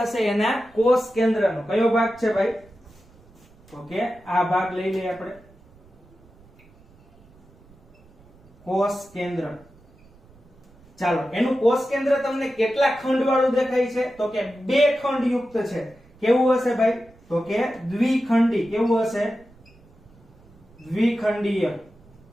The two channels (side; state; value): right; noise; rumble, 27 dB below the sound